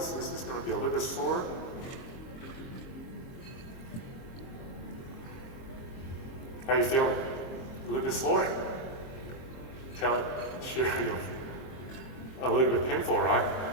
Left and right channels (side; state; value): right; late; 22 ms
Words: This is gonna be a little bit sore. How you feeling? A little bit sore? Sure, a little bit painful, right?